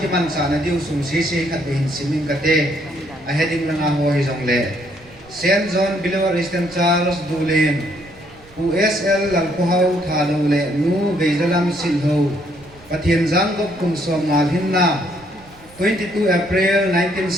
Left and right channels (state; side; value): noise; right; rumble, 25 dB below the sound